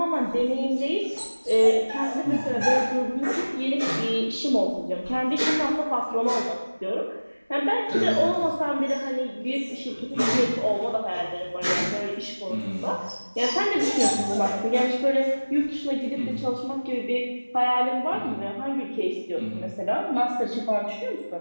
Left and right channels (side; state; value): both; inverted; correlation -1.00